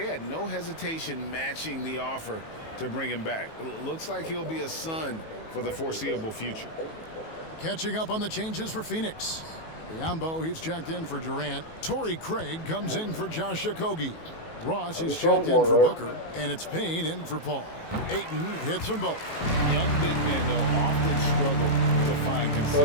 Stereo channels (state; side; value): late; right; 18 ms